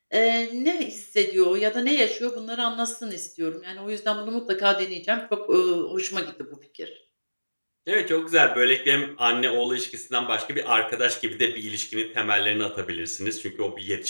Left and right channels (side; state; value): both; inverted; correlation -1.00